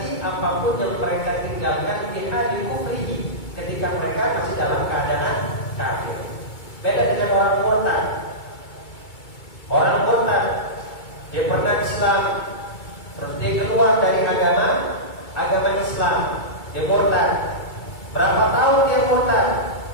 apapun yang mereka tinggalkan di hali kufri ketika mereka masih dalam keadaan kafir. Beda dengan orang murtad. Orang murtad, dia pernah Islam, terus dia keluar dari agama Islam, dia murtad. Berapa tahun dia murtad?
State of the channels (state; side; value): late; right; 2.2 ms